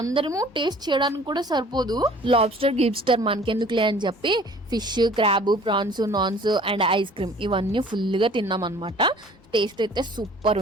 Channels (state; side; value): normal; both; correlation 0.51